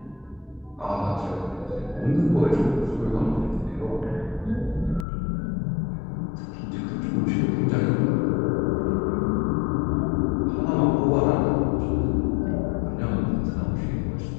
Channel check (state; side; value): drops out; right; at 5.1 s